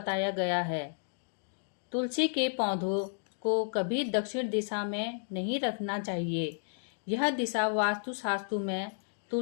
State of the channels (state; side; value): silent; right; digital silence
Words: गया है। तुलसी के पौधों को कभी दक्षिण दिशा में नहीं रखना चाहिए। यह दिशा वास्तुशास्त्र में